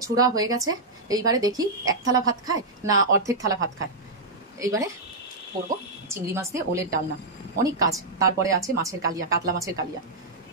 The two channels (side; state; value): left; quieter; 3.1 dB